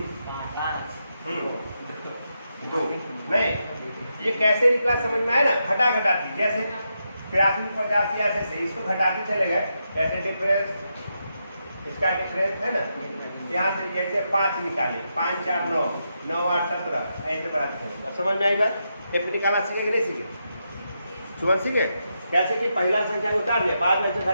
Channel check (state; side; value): inverted; both; correlation -0.84